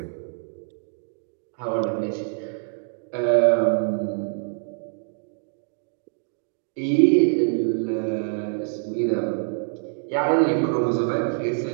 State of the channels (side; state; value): left; silent; 62 dB below the other